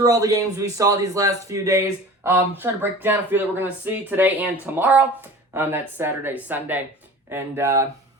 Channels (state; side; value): normal; both; correlation 0.40